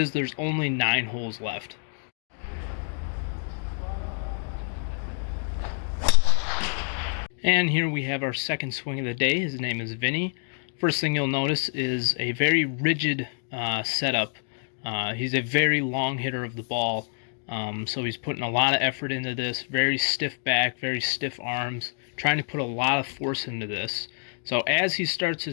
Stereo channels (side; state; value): right; silent; 56 dB below the other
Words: there's only 9 holes left. And here we have our second swing of the day. His name is Vinny. First thing you'll notice is a very rigid setup. He's a very long hitter of the ball, so he's putting a lot of effort into this. Very stiff back, very stiff arms, trying to put a lot of force into this. So as he starts